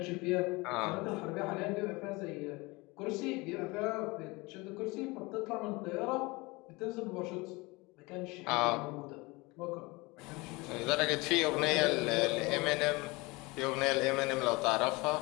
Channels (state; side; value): quieter; right; 24.3 dB